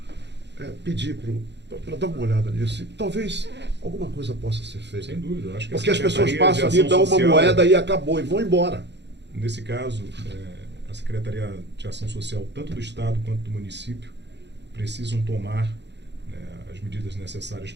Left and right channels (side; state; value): left; late; 0.51 ms